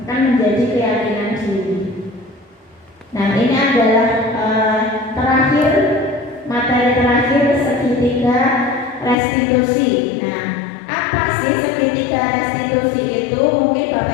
akan menjadi keyakinan diri. Nah, ini adalah terakhir, materi terakhir, segitiga restitusi. Nah, apa sih segitiga restitusi itu? Mungkin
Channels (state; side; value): drops out; right; at 9.2 s